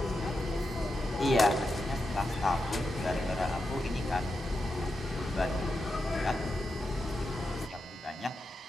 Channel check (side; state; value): both; normal; correlation 0.88